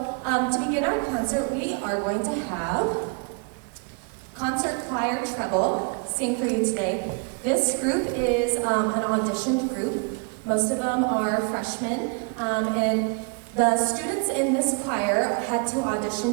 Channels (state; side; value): quieter; left; 36.6 dB